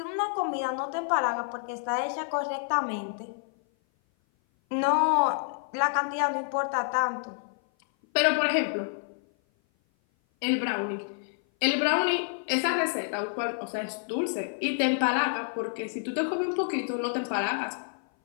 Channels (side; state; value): right; silent; 56 dB below the other